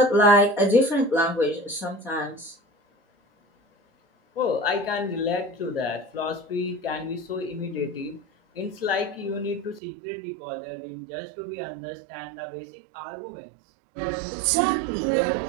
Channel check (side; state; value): left; drops out; at 9.8 s